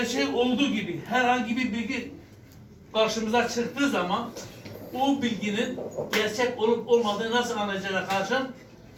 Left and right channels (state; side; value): identical; both; correlation 1.00